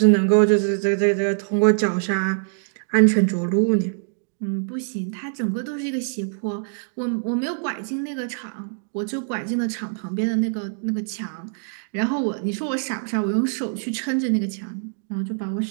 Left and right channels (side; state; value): left; silent; digital silence